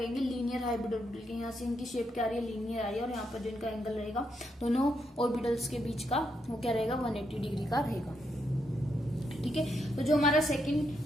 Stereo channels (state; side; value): normal; both; correlation 0.80